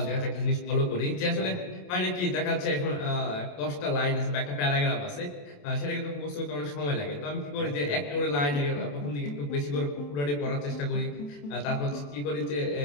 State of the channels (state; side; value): late; right; 28 ms